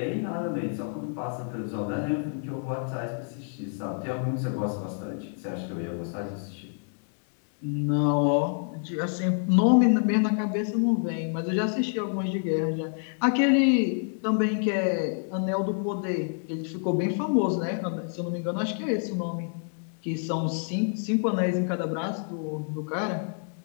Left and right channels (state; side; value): silent; right; 59 dB below the other